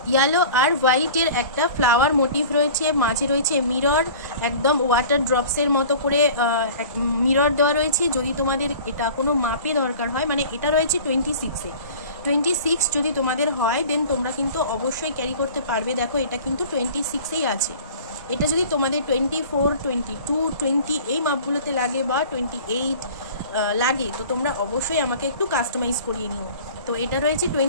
ইয়েলো আর হোয়াইটের একটা ফ্লাওয়ার মোটিভ রয়েছে, মাঝে রয়েছে মিরর, একদম ওয়াটার ড্রপসের মতো করে মিরর দেওয়া রয়েছে। যদি তোমাদের এটা কোনো মাপে দরকার হয়, মানে এটা রয়েছে 26 যদি তোমাদের হয় দেন তোমরা কিন্তু অবশ্যই ক্যারি করতে পারবে। দেখো এটা কিন্তু 26এই আছে। এটা যদি তোমাদের 24, 22, 20 এই মাপগুলোতে লাগে বা 28 লাগে তো তোমরা অবশ্যই আমাকে একটু কাস্টমাইজ করিয়ে নিও। তো এটা রয়েছে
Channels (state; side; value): inverted; both; correlation -0.43